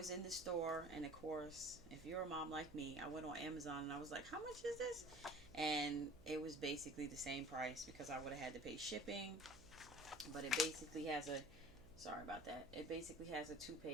in the store, and of course, if you're a mom like me, I went on Amazon and I was like, how much is this? And it was basically the same price, because I would have had to pay shipping. But it basically has a, sorry about that, it basically has a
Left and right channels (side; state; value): right; noise; hum, 19 dB below the sound